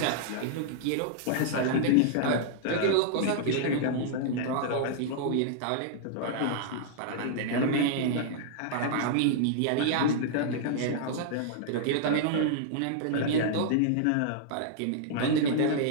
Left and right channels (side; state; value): both; different; correlation -0.01